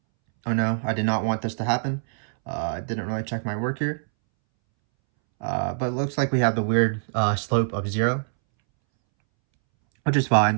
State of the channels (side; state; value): left; silent; 62 dB below the other